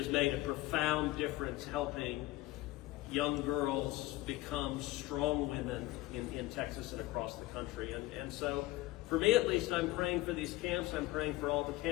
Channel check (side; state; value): right; quieter; 18.6 dB